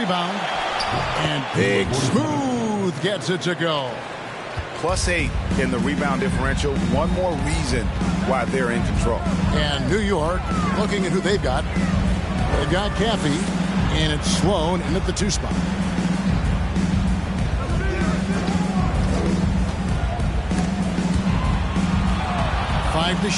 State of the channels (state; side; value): identical; both; correlation 1.00